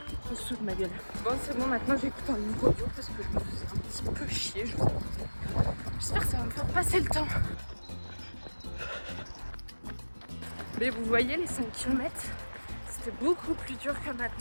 En dessous de ma gueule. Bon, c'est bon, maintenant j'écoute un livre audio parce que je me faisais un petit peu chier, je vous avoue. J'espère que ça va me faire passer le temps. Mais vous voyez, les 5 km, c'était beaucoup plus dur que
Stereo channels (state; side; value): inverted; both; correlation -1.00